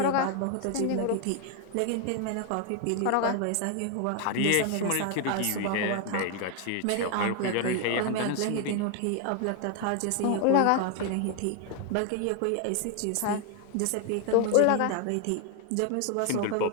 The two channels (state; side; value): different; both; correlation 0.01